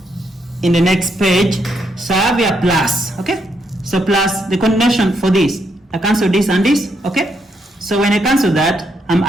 in the next page. So I have here plus, okay? So plus the combination for this, I cancel this and this, okay? So when I cancel that, I'm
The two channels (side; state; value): both; normal; correlation 0.77